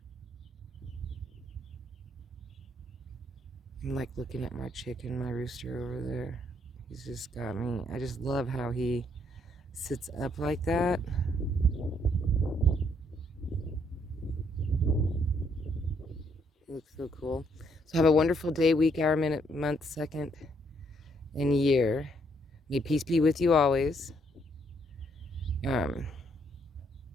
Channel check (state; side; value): normal; both; correlation 0.71